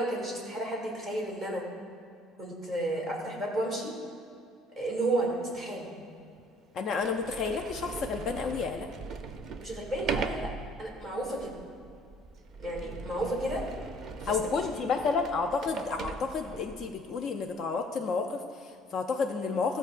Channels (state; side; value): normal; both; correlation 0.58